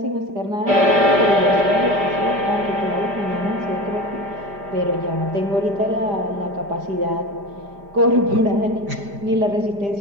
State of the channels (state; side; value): late; left; 5.0 ms